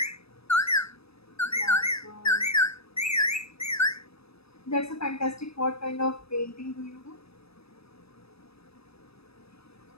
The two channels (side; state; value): right; late; 0.78 ms